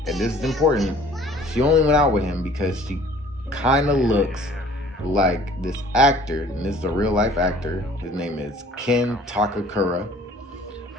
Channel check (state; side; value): normal; both; correlation 0.52